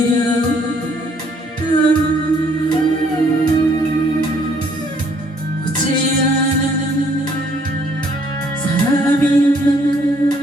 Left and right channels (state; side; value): normal; both; correlation 0.64